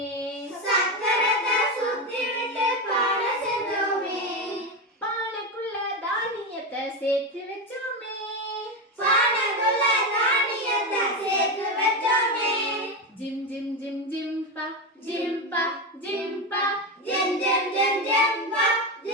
சக்கரத்தை சுத்தி விட்டு பானை செஞ்சோமே. பானைக்குள்ள தானியத்தை சேர்த்து வச்சோமே. பானைக்குள்ள தானியத்தை சேர்த்து வச்சோமே. ஜிம் ஜிம் ஜிம் ஜிம்பா ஜிம்பா ஜிம்பா ஜிம் ஜிம் ஜிம் ஜிம்பா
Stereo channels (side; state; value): both; normal; correlation 0.14